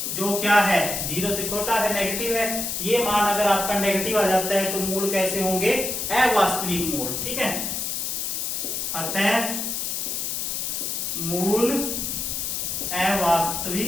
जो क्या है 0 से छोटा है, नेगेटिव है। ये मान अगर आपका नेगेटिव आ जाता है तो मूल कैसे होंगे, अवास्तविक मूल, ठीक है। अतः मूल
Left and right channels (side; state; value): left; noise; hiss, 2 dB below the sound